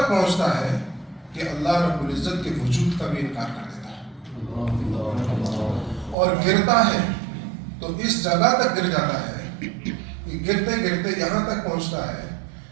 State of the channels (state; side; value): drops out; left; at 6.2 s